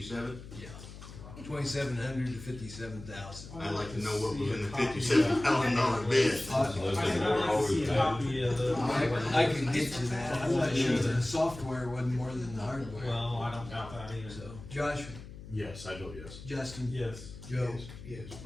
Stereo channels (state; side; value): noise; left; hum, 14 dB below the sound